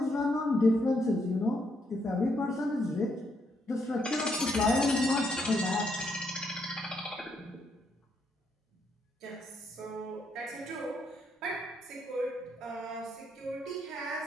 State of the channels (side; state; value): both; normal; correlation 0.76